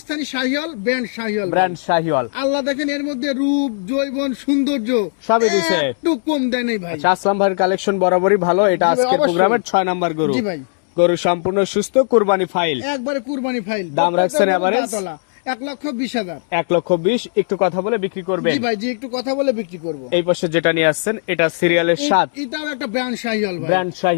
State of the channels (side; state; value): right; silent; digital silence